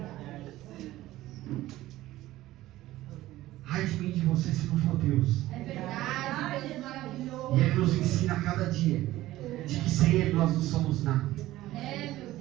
Ai de mim, de você, se não for Deus. É verdade, Deus maravilhoso. E Ele nos ensina a cada dia de que sem Ele nós não somos nada. É, meu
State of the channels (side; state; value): left; quieter; 16.0 dB